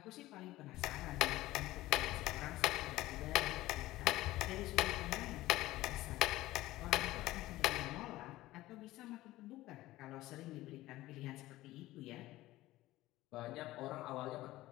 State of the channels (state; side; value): quieter; right; 16.9 dB